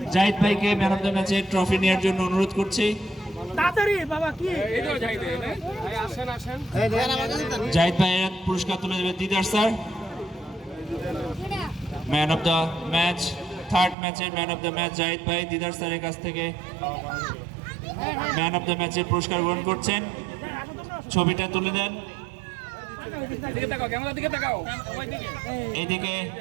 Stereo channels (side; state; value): left; drops out; at 14.0 s